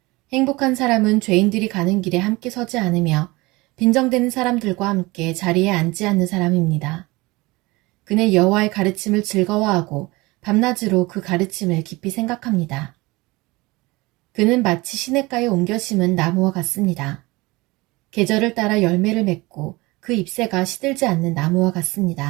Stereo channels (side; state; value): left; quieter; 22.5 dB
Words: 행복한 사람은 죄인들이 가는 길에 함께 서지 않으며 빈정대는 사람들과 함께 자리에 앉지 않는 사람입니다. 그는 여호와의 가르침을 즐거워하고 밤낮으로 그 가르침을 깊이 생각합니다. 그는 마치 시냇가에 옮겨 심은 나무와 같습니다. 계절을 따라 열매를 맺고 그 잎새가 시들지 않는 나무와